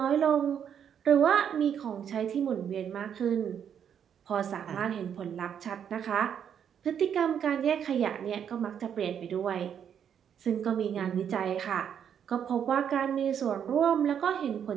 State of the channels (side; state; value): left; quieter; 8.5 dB